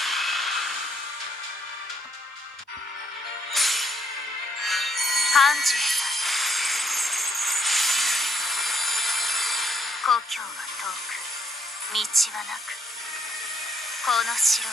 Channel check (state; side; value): normal; both; correlation 0.71